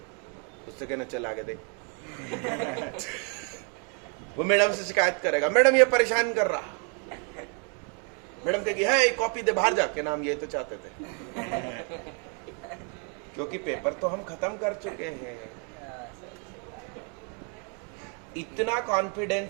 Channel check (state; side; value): quieter; left; 38.9 dB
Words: उससे कहना चल आगे देख। वो मैडम से शिकायत करेगा, मैडम ये परेशान कर रहा। मैडम कहेगी है कॉपी दे बाहर जाके, नाम ये तो चाहते थे। क्योंकि पेपर तो हम खत्म कर चुके हैं। इतना